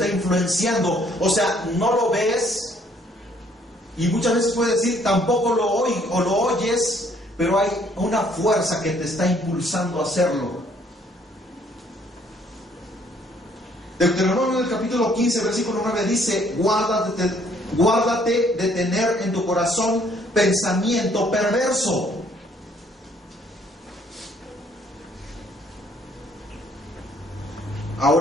influenciando. O sea, no lo ves y muchas veces puedes decir tampoco lo oyes, pero hay una fuerza que te está impulsando a hacerlo. Deuteronomio del capítulo 15, versículo 9 dice: guárdate de tener en tu corazón pensamiento perverso.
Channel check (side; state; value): both; normal; correlation 0.64